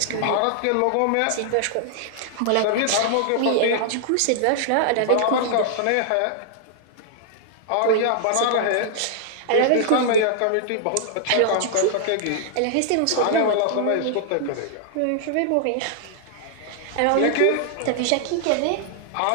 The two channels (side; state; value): both; different; correlation -0.01